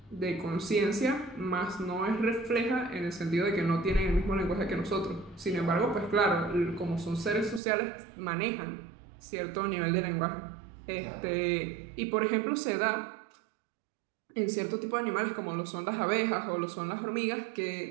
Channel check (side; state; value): left; drops out; at 7.6 s